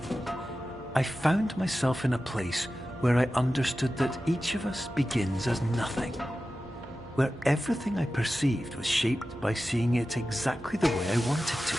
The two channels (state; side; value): normal; both; correlation 0.94